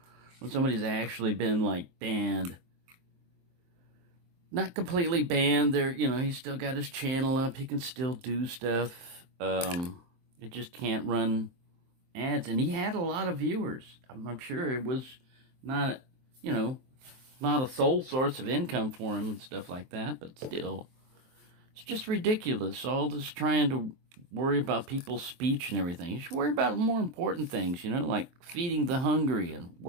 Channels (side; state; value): left; late; 23 ms